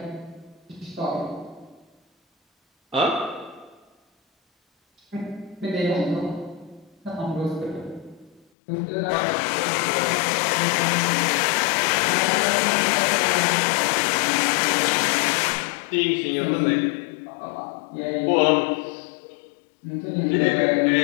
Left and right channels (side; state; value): right; drops out; at 8.4 s